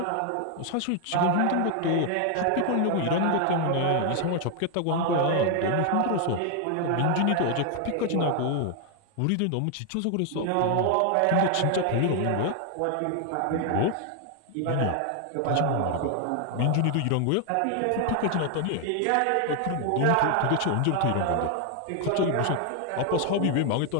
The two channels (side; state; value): both; different; correlation 0.00